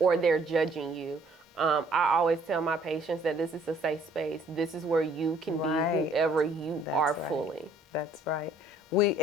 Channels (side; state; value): both; normal; correlation 0.60